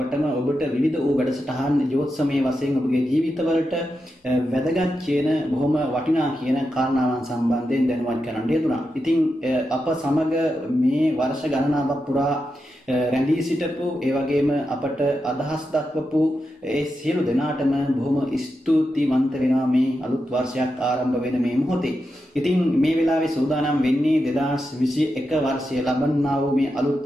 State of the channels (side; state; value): both; normal; correlation 0.88